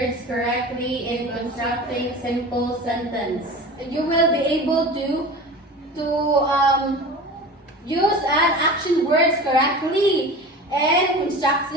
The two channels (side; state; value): both; normal; correlation 0.34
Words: correctly in constructing simple sentence. you will be able to use an action words correctly and